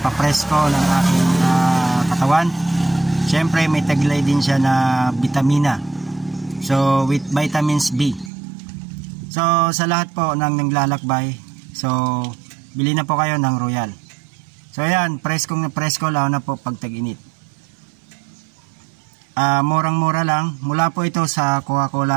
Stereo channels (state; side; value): drops out; left; at 8.3 s